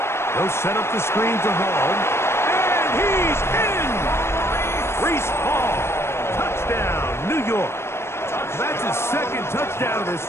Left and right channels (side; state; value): right; late; 0.12 ms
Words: They'll set up the screen to Hall. And he's in! Reese Hall. Touchdown, New York. That's his 2nd touchdown of this